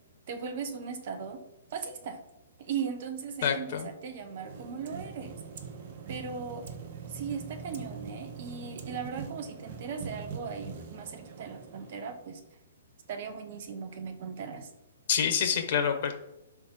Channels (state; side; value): inverted; both; correlation -0.40